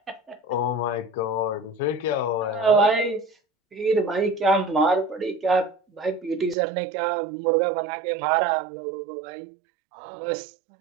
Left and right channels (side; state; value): left; drops out; at 6.6 s